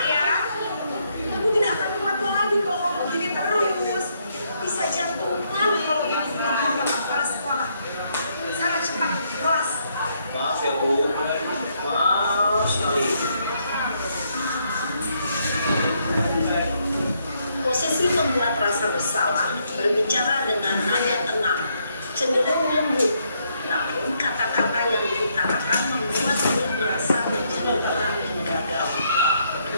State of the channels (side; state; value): both; inverted; correlation -0.74